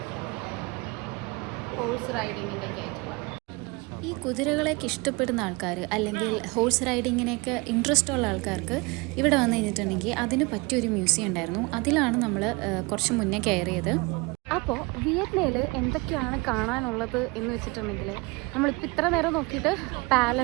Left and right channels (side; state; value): left; quieter; 25.9 dB